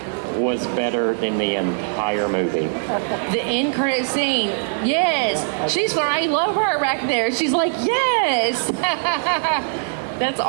was better than the entire movie. The end credit scene, yes. She's I love her back there. She's like, yes. That's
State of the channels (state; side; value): silent; left; digital silence